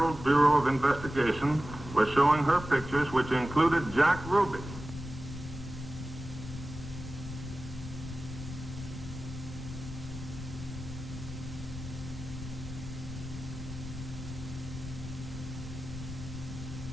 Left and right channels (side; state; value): left; noise; rumble, 10 dB below the sound